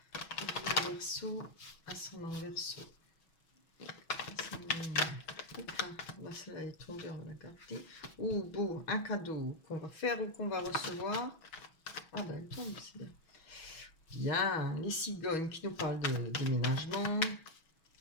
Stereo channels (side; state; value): right; late; 6.2 ms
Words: Pour vous, les Verseau, ascendant Verseau. Là, celle-là est tombée, on va la garder. Oh, beau, un cadeau qu'on va faire ou qu'on va recevoir. Ah ben, elle tombe, c'est bien. Bien, les cigognes qui nous parlent de déménagement,